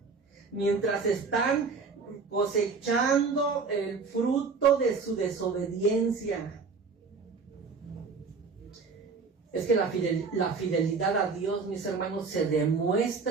mientras están cosechando el fruto de su desobediencia. Es que la fidelidad a Dios, mis hermanos, se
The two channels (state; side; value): quieter; left; 4.8 dB